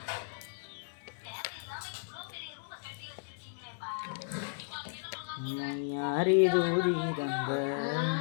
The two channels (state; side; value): silent; right; digital silence